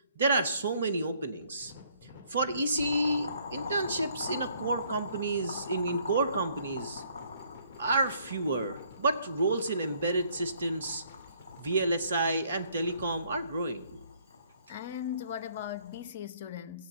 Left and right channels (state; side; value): inverted; both; correlation -0.64